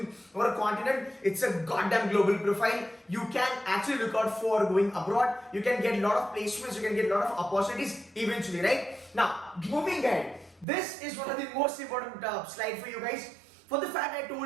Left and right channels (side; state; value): left; drops out; at 10.7 s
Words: or a continent. It's a goddamn global profile. You can actually look out for going abroad. You can get a lot of placements. You can get a lot of opportunities eventually, right? Now, moving ahead. This is one of the most important slide for you guys. For the fact I